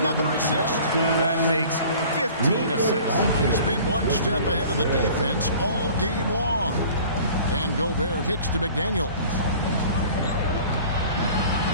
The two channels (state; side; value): inverted; both; correlation -0.46